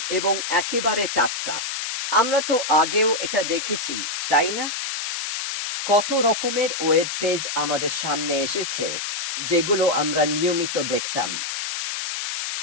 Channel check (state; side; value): noise; left; hiss, 4 dB below the sound